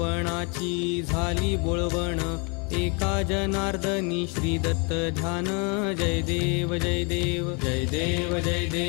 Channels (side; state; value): right; quieter; 33.3 dB